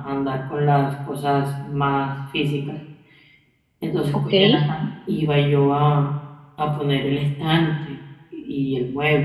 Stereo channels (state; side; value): identical; both; correlation 1.00